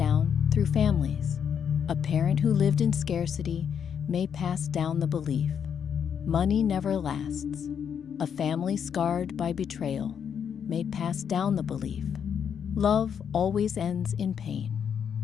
through families. A parent who lived in scarcity may pass down the belief money never lasts. A family scarred by betrayal may pass down the belief love always ends in pain.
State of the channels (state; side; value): quieter; right; 7.8 dB